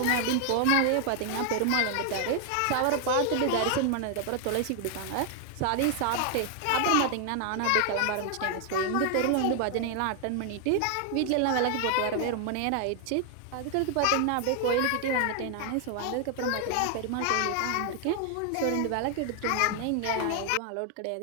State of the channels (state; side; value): different; both; correlation 0.00